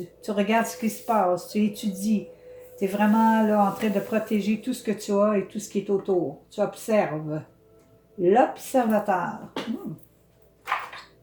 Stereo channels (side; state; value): both; identical; correlation 1.00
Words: regardes ce qui se passe. Tu étudies. Tu es vraiment là en train de protéger tout ce que tu as et tout ce qui est autour. Tu observes. L'observateur.